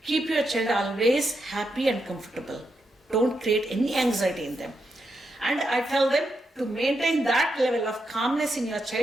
keep your child always happy and comfortable. Don't create any anxiety in them. And I tell them to maintain that level of calmness in your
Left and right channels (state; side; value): normal; both; correlation 0.84